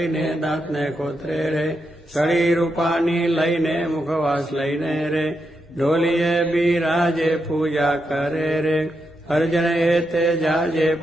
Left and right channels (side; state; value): both; normal; correlation 0.84